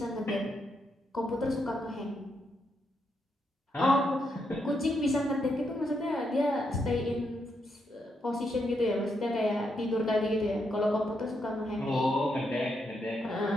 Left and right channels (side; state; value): both; normal; correlation 0.80